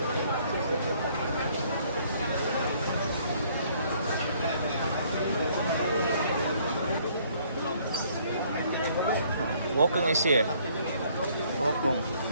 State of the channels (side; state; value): both; inverted; correlation -0.63